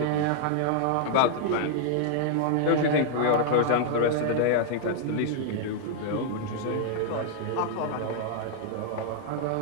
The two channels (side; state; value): both; different; correlation -0.01